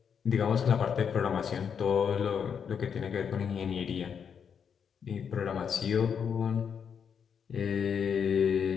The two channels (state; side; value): quieter; right; 7.2 dB